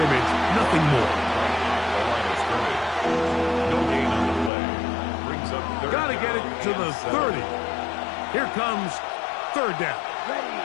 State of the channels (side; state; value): right; drops out; at 4.5 s